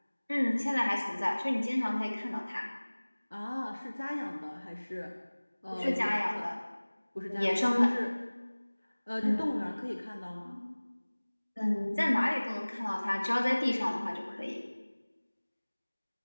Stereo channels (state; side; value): inverted; both; correlation -1.00